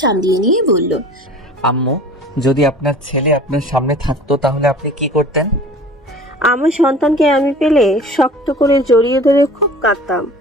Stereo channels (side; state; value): both; normal; correlation 0.43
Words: সামলিয়ে নিয়ে বলল, আম্মু, যদি আপনার ছেলে আপনার সামনে থাকতো তাহলে আপনি কি করতেন? আমার সন্তানকে আমি পেলে শক্ত করে জড়িয়ে ধরে খুব কাঁদতাম।